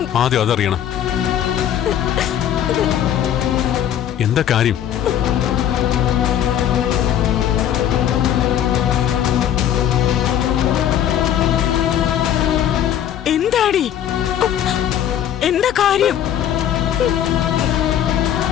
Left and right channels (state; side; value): quieter; right; 10.4 dB